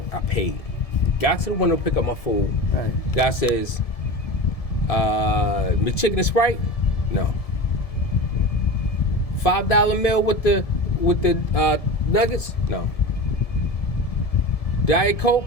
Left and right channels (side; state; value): right; late; 1.7 ms